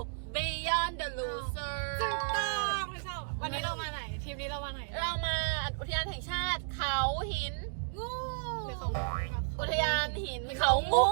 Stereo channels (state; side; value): silent; left; digital silence